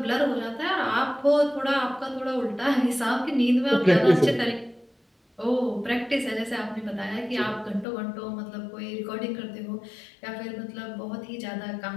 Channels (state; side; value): drops out; right; at 7.9 s